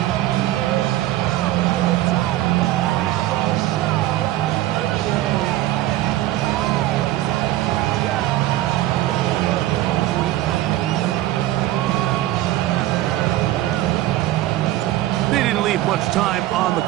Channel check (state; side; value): quieter; left; 15.1 dB